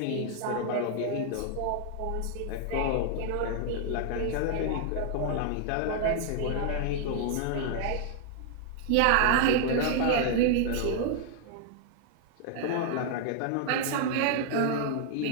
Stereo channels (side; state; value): both; different; correlation 0.00